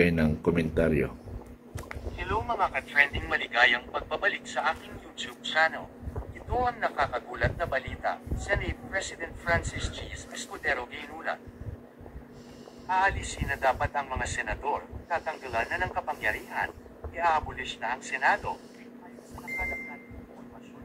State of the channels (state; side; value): identical; both; correlation 1.00